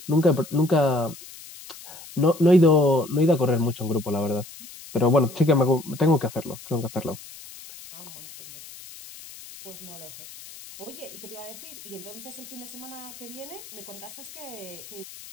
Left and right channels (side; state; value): left; noise; hiss, 16 dB below the sound